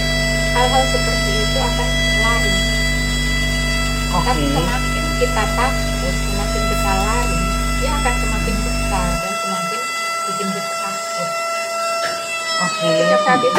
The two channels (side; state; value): both; identical; correlation 1.00